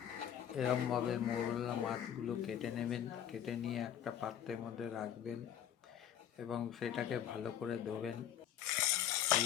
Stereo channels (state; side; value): quieter; right; 10.0 dB